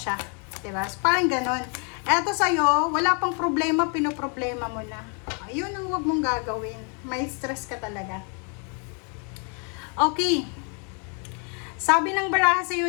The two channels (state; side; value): quieter; right; 38.4 dB